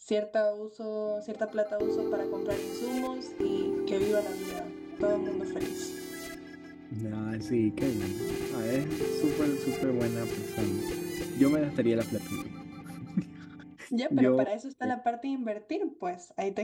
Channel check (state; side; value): identical; both; correlation 1.00